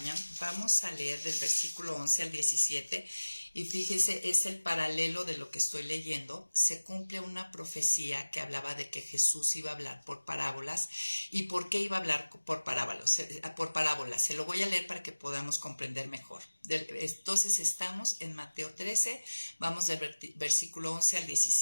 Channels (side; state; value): both; inverted; correlation -1.00